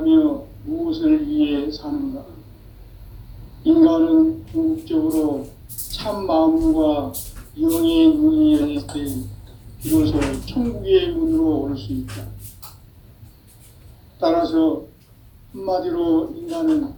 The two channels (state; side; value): identical; both; correlation 1.00